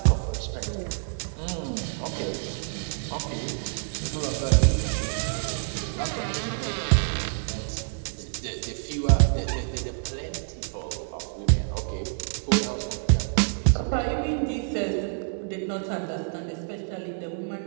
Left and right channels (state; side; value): silent; left; 60 dB below the other